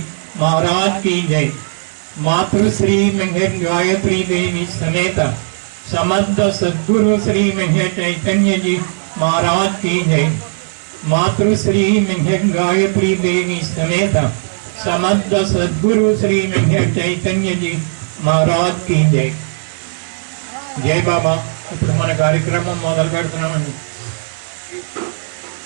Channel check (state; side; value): silent; left; digital silence